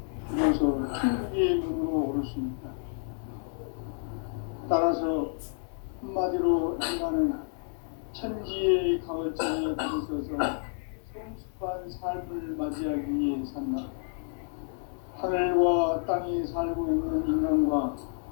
비로소 천국의 문으로 오를 수 있다. 따라서 한마디로 인간은 천지의 가을장에 들어서서 성숙한 삶을 맞이하기 위해 산다. 하늘과 땅에 살고 있는 인간과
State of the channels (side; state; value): right; silent; digital silence